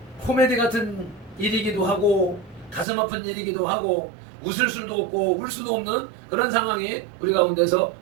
코미디 같은 일이기도 하고 가슴 아픈 일이기도 하고 웃을 수도 없고 울 수도 없는 그런 상황이 우리 가운데서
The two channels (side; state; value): left; drops out; at 2.9 s